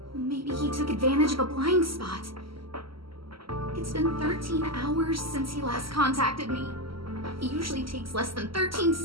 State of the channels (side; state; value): left; late; 0.75 ms